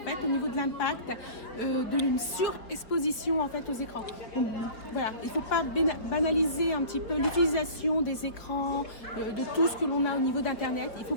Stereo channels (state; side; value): late; right; 4.5 ms